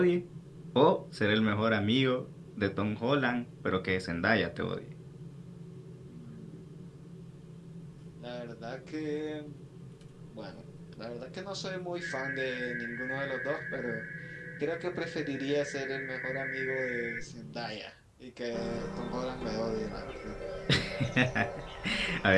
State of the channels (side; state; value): both; identical; correlation 1.00